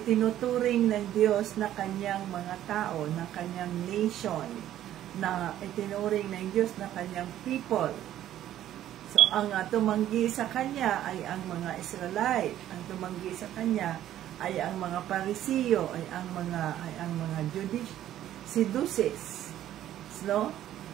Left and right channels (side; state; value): left; quieter; 12.2 dB